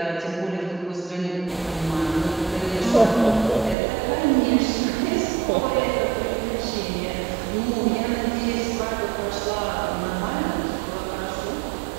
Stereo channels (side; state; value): left; drops out; at 3.8 s